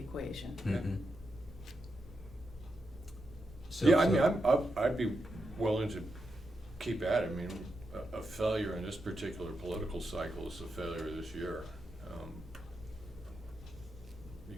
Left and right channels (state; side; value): normal; both; correlation 0.86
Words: Mm-hmm. Yeah, I mean, I'd be willing to keep at it. I mean, a failure in this particular political cycle is a failure this year.